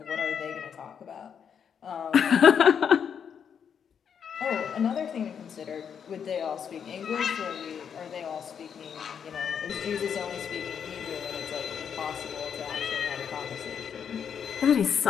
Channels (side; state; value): right; quieter; 7.5 dB